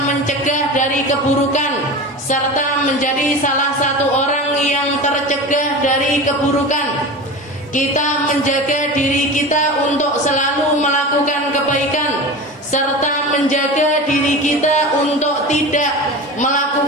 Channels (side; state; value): both; normal; correlation 0.30